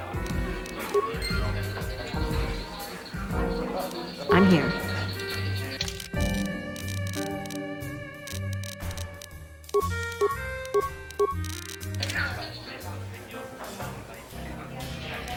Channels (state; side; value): identical; both; correlation 1.00